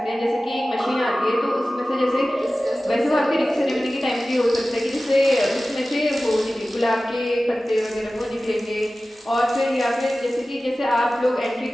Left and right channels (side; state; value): both; normal; correlation 0.96